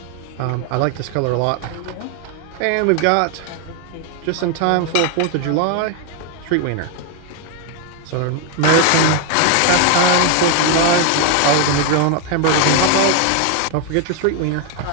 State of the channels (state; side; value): different; both; correlation 0.01